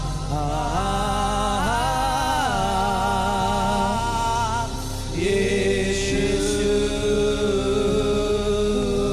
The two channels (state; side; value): identical; both; correlation 1.00